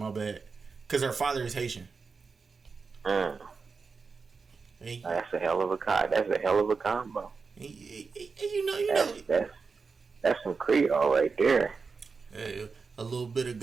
bad. Because her father is Haitian. That's a hell of a combo. That's some Creole right there. Hey, a little bit of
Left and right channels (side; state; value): left; quieter; 4.8 dB